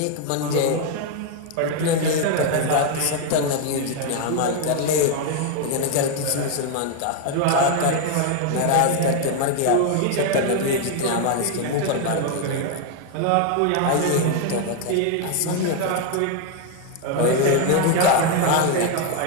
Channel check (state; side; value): different; both; correlation 0.01